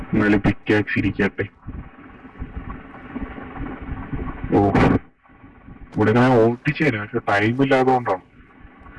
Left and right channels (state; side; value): identical; both; correlation 1.00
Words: എന്നാലും പിക്കാക്സ് ഇരിക്കട്ടെ. ഇവിടെ ഞാൻ ഓട്ടിച്ചു തരാം, പക്ഷെ ടൈം ഇല്ലാത്തതുകൊണ്ടാണ്